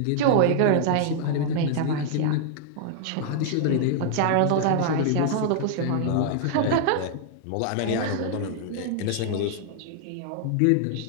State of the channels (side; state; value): both; different; correlation -0.01